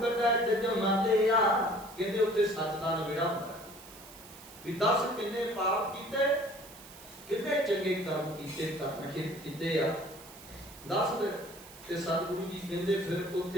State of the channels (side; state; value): right; noise; hiss, 18 dB below the sound